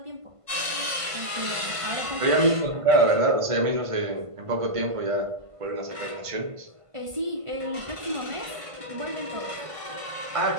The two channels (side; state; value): left; late; 1.5 ms